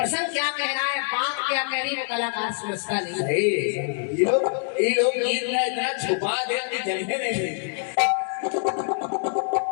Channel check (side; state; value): right; silent; digital silence